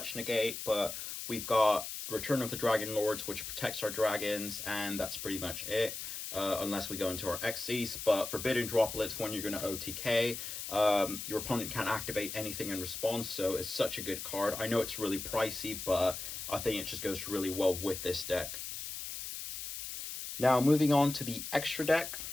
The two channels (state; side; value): noise; left; hiss, 7 dB below the sound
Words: negate, but we've got Return of the Dragon Lords, which protects our dragons, and that's pretty much it, unless we go into our XYZ. But Forbidden Droplets, when you're going to OTK, your opponent can't activate anything in response, so it's such a good card. I know it's really pricey, but I think it just goes really well with this deck. Now, moving on to the extra deck,